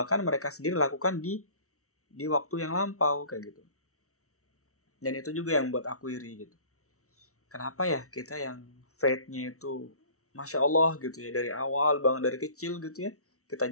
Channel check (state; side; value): late; right; 0.64 ms